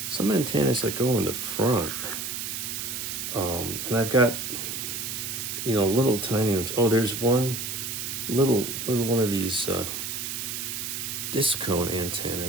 antennas that go in the front, and I've got little tiny ones. Oh, there's one little one of these disc cone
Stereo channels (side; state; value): right; noise; hiss, 4 dB below the sound